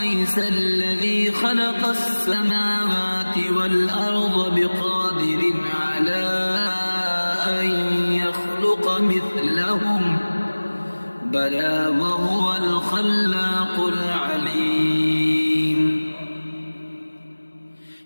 الذي خلق السماوات والأرض بقادر على أن يخلق مثلهم بلى وهو الخلاق العليم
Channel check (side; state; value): both; inverted; correlation -1.00